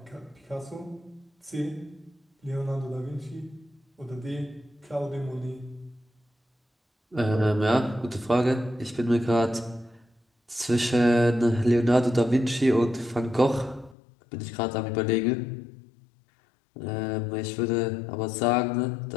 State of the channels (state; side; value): drops out; right; at 14.0 s